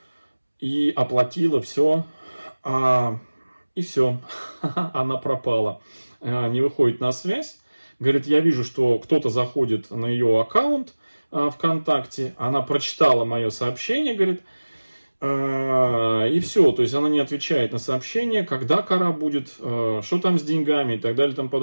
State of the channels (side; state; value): both; inverted; correlation -1.00